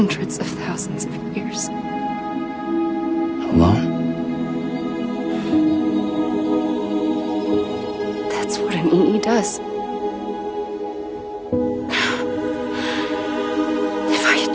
of thousands of years. Alone? That's what an EE does. If I had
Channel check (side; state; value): both; identical; correlation 1.00